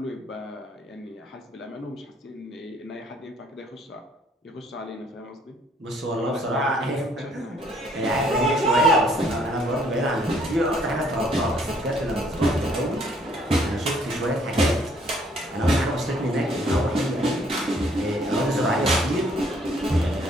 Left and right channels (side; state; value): both; normal; correlation 0.64